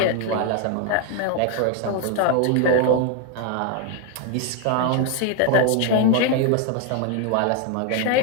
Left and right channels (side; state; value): both; different; correlation 0.01